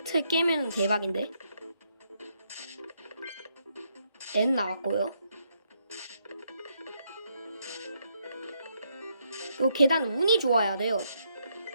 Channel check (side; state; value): both; inverted; correlation -0.76